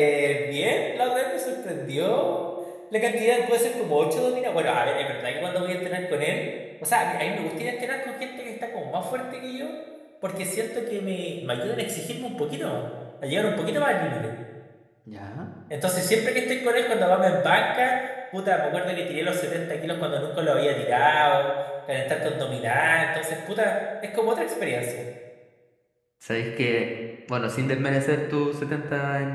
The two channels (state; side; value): identical; both; correlation 1.00